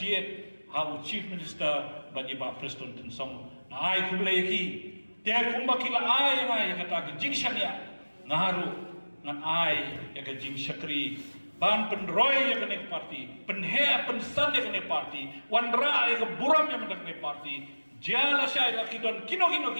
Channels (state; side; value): inverted; both; correlation -1.00